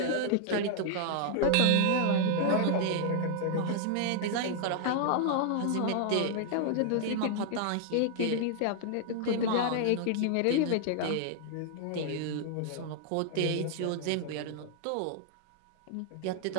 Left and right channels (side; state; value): both; different; correlation 0.00